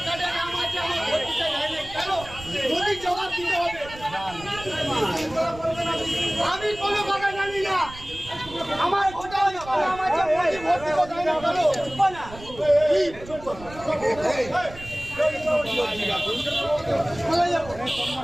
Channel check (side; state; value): right; noise; rumble, 17 dB below the sound